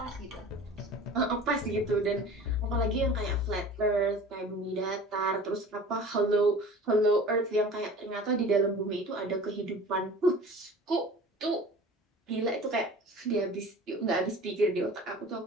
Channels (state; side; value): normal; both; correlation 0.41